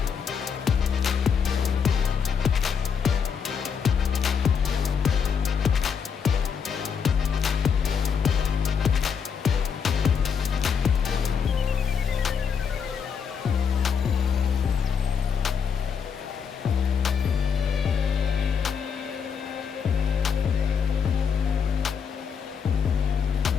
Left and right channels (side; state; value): right; quieter; 6.7 dB